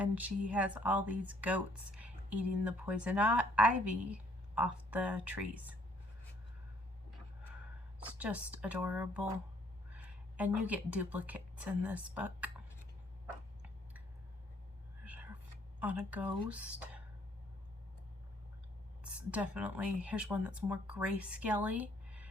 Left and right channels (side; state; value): both; normal; correlation 0.64